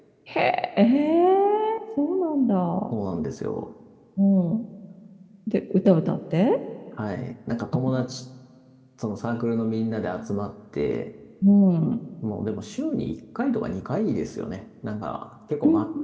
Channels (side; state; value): both; identical; correlation 1.00